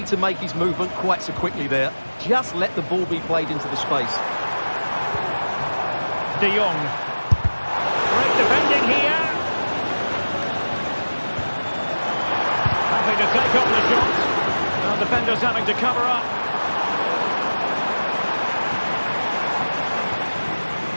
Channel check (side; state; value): both; inverted; correlation -1.00